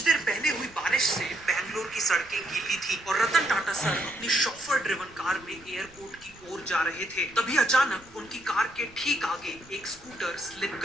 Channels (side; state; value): right; noise; rumble, 24 dB below the sound